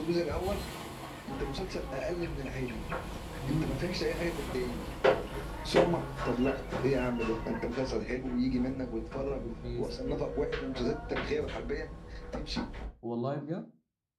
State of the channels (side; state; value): both; identical; correlation 1.00